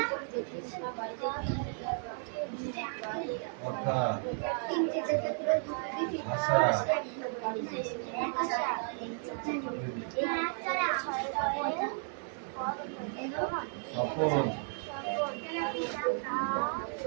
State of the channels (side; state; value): left; silent; 55 dB below the other